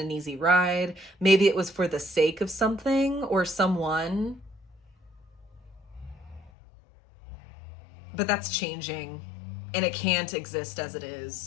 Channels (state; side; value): drops out; right; at 6.5 s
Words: easy ride. Maybe it was for the sake of something or someone. But that's changing. And it can't exist as it